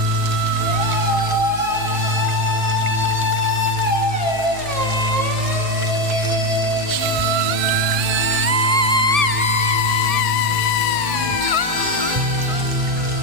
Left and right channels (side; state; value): left; late; 1.7 ms